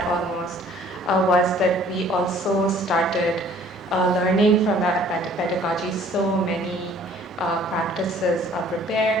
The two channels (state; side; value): normal; both; correlation 0.55